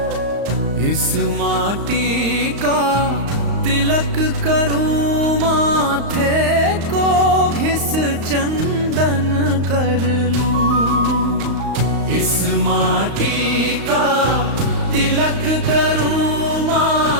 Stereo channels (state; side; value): late; left; 35 ms